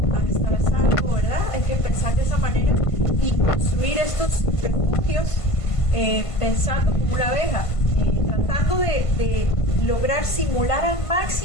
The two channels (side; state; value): right; late; 1.5 ms